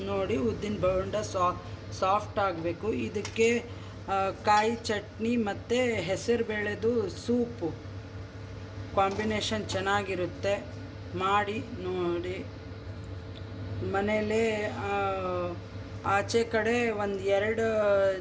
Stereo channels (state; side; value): identical; both; correlation 1.00